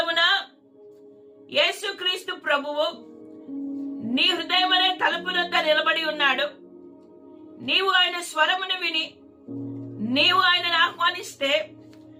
యేసుక్రీస్తు ప్రభువు నీ హృదయం అనే తలుపునొద్ద నిలబడి ఉన్నాడు. నీవు ఆయన స్వరమును విని నీవు ఆయనను ఆహ్వానిస్తే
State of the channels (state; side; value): identical; both; correlation 1.00